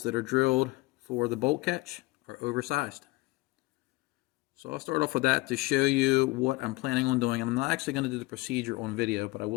that are drilled for the bolt catch are oversized. So I'll start off with that to show you what I'm planning on doing. I'm not actually going to do the procedure on video, but I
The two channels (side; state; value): right; quieter; 22.1 dB